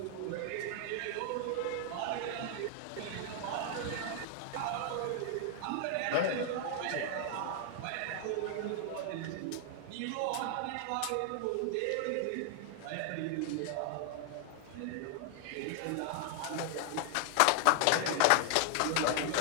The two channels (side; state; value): both; different; correlation 0.00